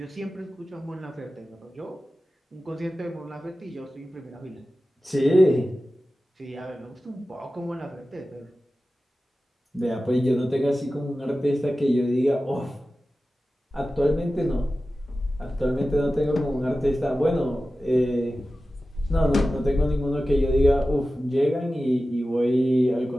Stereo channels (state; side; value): normal; both; correlation 0.95